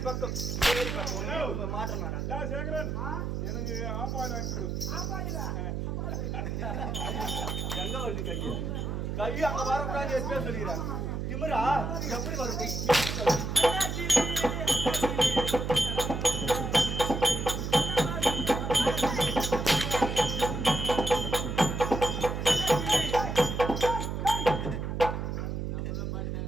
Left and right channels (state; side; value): noise; right; hum, 3 dB below the sound